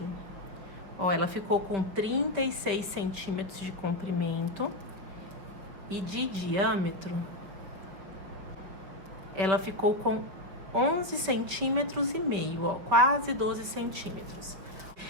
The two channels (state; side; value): late; left; 5.5 ms